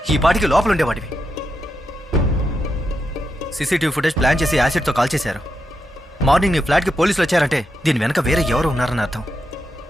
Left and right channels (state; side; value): normal; both; correlation 0.85